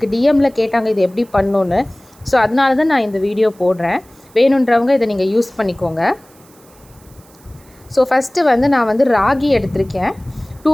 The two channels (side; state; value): right; noise; hiss, 28 dB below the sound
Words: டிஎம்மில் கேட்டாங்க இது எப்படி பண்ணணுன்னு. ஸோ அதனால தான் நான் இந்த வீடியோ போடுறேன். வேணுன்றவங்க இதை நீங்கள் யூஸ் பண்ணிக்கோங்க. ஸோ ஃபஸ்ட்டு வந்து நான் வந்து ராகி எடுத்திருக்கேன்.